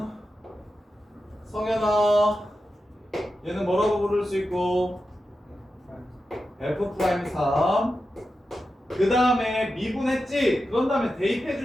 성현아, 얘는 뭐라고 부를 수 있고 f'3. 그 다음에 미분했지? 그런 다음에 대입해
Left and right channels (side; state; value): both; normal; correlation 0.91